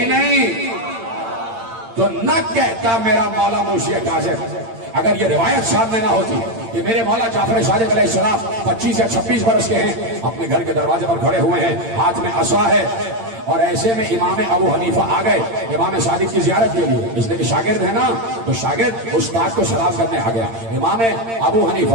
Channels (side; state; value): left; late; 8.8 ms